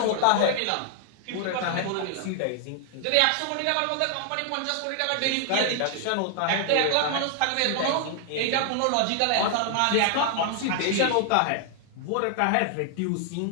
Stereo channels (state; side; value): different; both; correlation 0.00